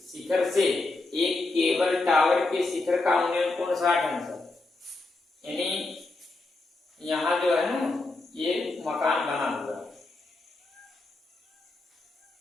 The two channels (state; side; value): quieter; right; 3.2 dB